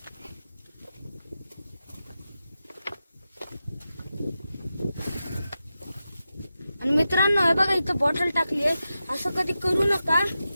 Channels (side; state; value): both; inverted; correlation -0.91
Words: आणि मित्रांनो, हे बघा इथं बॉटल टाकली आहे. असं कधी करू नका,